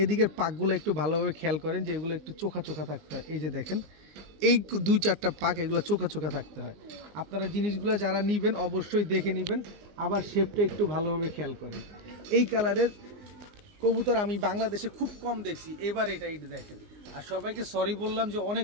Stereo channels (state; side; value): late; left; 19 ms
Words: এদিকের পাকগুলো একটু ভালোভাবে খেয়াল করেন, যে এগুলো একটু চোখা চোখা থাকতে হয়। এই যে দেখেন, এই 2-4টা পাক এগুলো চোখা চোখা থাকতে হয়। আপনারা জিনিসগুলো যারা নেবেন অবশ্যই দেখে নেবেন, আবার শেপটা একটু ভালোভাবে খেয়াল করেন। এই কালারের কবুতর আমি বাংলাদেশে খুব কম দেখছি, এবার এটা দেখেন। আর সবাইকে সরি বললাম যে